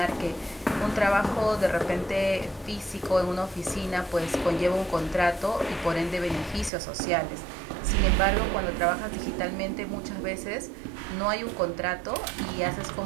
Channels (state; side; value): drops out; left; at 6.7 s